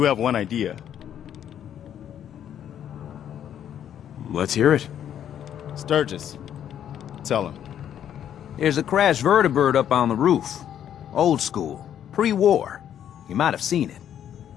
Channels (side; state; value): right; quieter; 9.9 dB